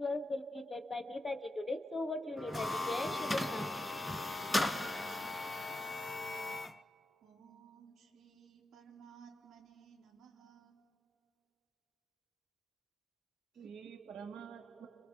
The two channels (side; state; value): both; normal; correlation 0.88